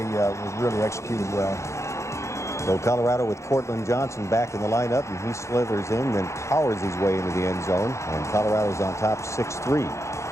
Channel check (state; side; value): late; right; 0.14 ms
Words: was really executed well. So Colorado with Cortland Johnson back in the lineup, and he slithers in, then powers his way into the end zone, and Colorado's on top 6-3.